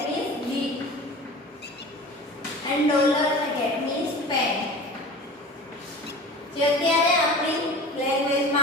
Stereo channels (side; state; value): both; normal; correlation 0.37